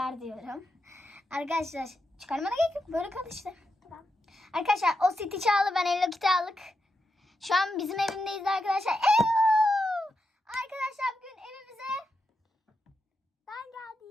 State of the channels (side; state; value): both; normal; correlation 0.86